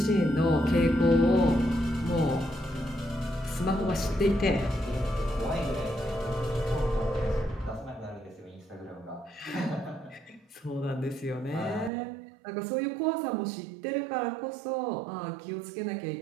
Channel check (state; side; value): drops out; left; at 11.9 s